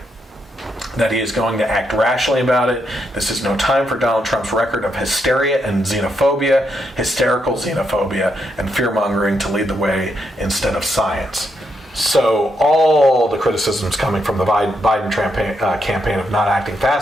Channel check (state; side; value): normal; both; correlation 0.80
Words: that he is going to act rationally about it. This is no time for Donald Trump's record of hysteria and xenophobia, hysterical xenophobia, and fear-mongering to lead the way instead of science. So all the criticisms coming from the Biden campaign of not acting